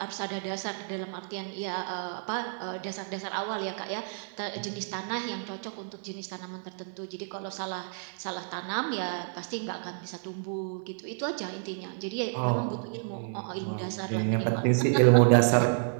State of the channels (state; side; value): silent; left; 58 dB below the other